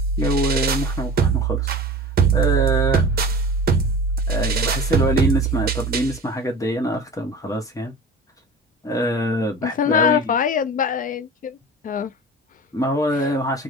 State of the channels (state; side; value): normal; both; correlation 0.36